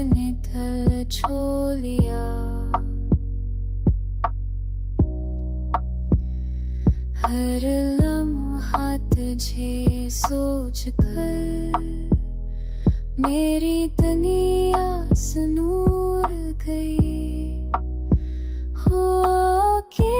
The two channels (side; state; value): both; identical; correlation 1.00